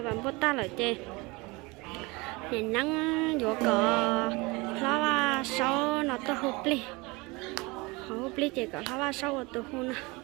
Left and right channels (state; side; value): quieter; left; 25.0 dB